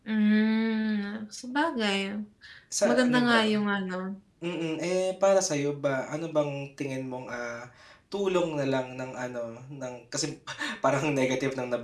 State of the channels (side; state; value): both; identical; correlation 1.00